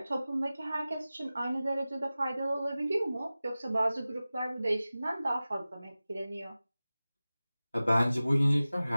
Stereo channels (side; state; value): both; inverted; correlation -0.97